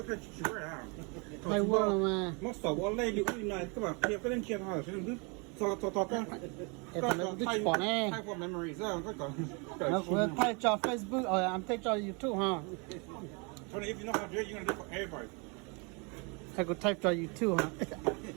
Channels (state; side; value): quieter; left; 32.6 dB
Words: chỉ vậy à. Hay quá mà. Nó sợ quá lấy liệu này các bạn kia cái lên kia thôi, chứ đừng cho cái. Cái bỏ nè. Type of memories á, cái còn. Nó cũng thay cho Facebook, I'm thay cho YouTube ha. Tony, if you know how to do it, you're gonna do it for everybody. Thay cũng thay cho YouTube ha.